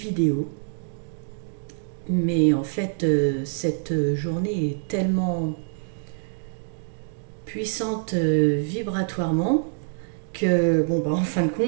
mais en fait cette journée est tellement puissante vibratoirement que bon bah en fin de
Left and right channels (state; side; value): silent; left; digital silence